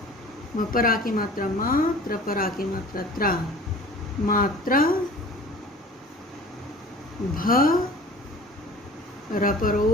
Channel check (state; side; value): normal; both; correlation 0.44